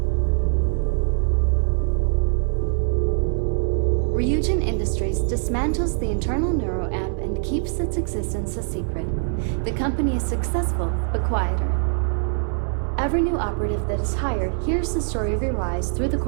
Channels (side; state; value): left; silent; 63 dB below the other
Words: Ryujin Industries dismantles the internal neuro-amp and keeps its existence a secret. The company is successful, but quieter. Every new operative that is hired hears the story of your rise through the